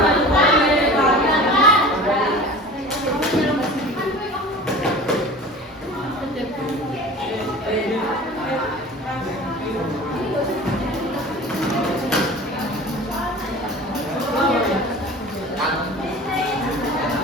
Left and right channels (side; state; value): both; normal; correlation 0.39